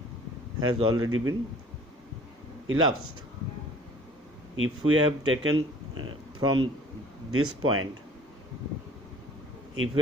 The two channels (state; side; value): normal; both; correlation 0.50